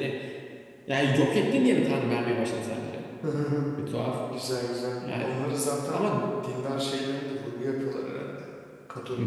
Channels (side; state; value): both; identical; correlation 1.00